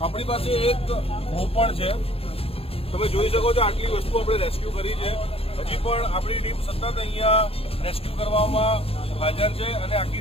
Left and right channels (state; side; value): late; right; 0.28 ms